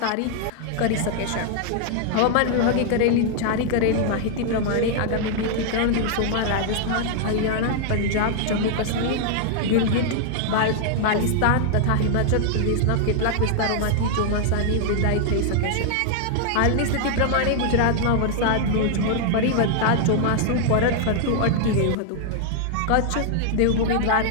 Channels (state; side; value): different; both; correlation 0.00